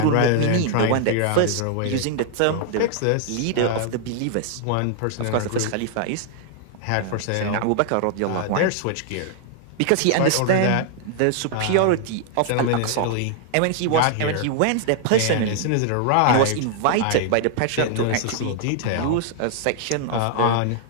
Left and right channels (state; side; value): different; both; correlation 0.00